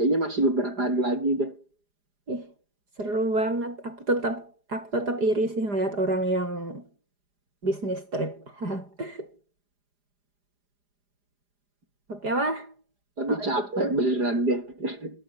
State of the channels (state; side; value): late; left; 4.9 ms